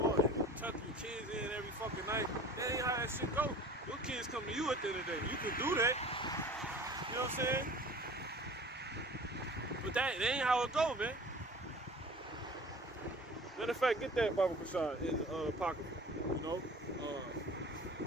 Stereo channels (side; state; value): both; normal; correlation 0.43